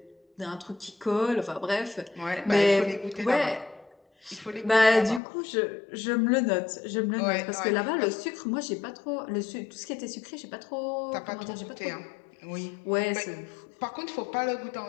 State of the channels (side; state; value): right; drops out; at 5.2 s